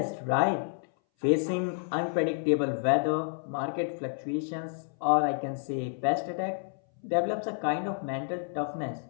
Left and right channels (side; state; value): right; silent; 58 dB below the other